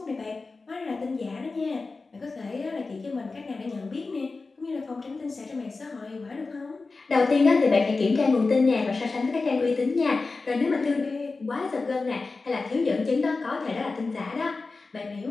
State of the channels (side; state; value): right; quieter; 3.9 dB